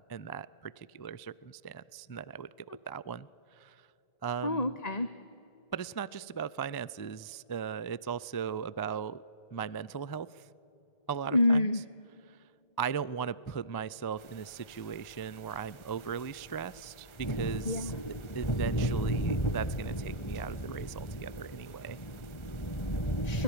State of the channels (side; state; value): right; late; 1.1 ms